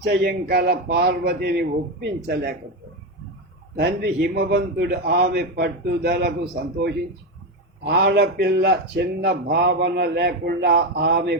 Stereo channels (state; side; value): normal; both; correlation 0.12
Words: కల పార్వతిని ఒప్పించలేకపోయింది. తండ్రి హిమవంతుడు ఆమె పట్టుదలకు సంతోషించి ఆడపిల్ల చిన్న భావన లేకుండా ఆమె